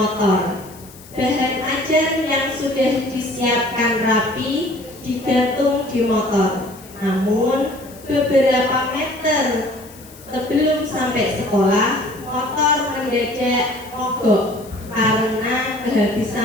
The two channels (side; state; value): left; noise; hiss, 21 dB below the sound